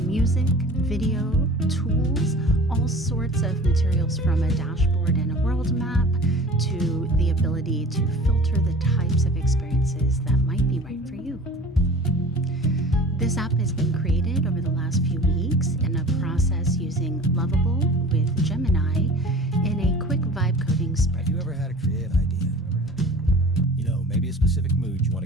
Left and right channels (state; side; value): normal; both; correlation 0.42